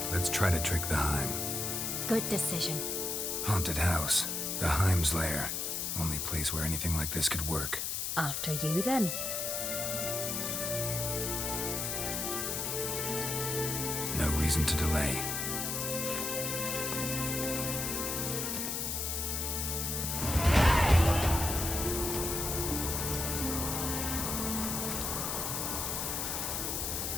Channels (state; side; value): noise; left; hiss, 1 dB below the sound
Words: let's try to trick the Heim. Good decision. Haunted house. The Heim's lair. Only place where anything like this could work. After you then. No reason to delay.